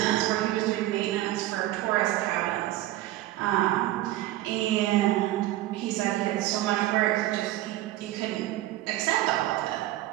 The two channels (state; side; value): quieter; left; 15.5 dB